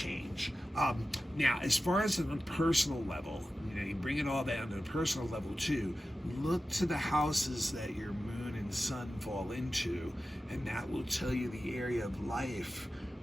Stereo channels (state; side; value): normal; both; correlation 0.94